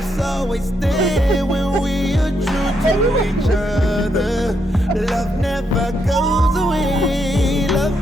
always there when we are true to each other. Love never goes away. Love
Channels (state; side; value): normal; both; correlation 0.78